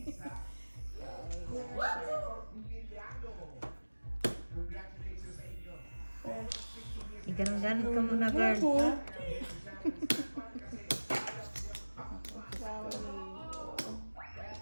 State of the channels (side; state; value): both; inverted; correlation -1.00